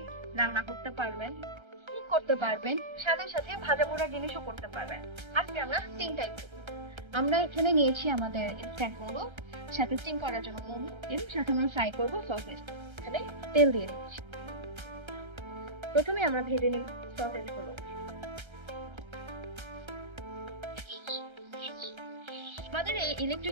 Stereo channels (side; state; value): left; late; 1.3 ms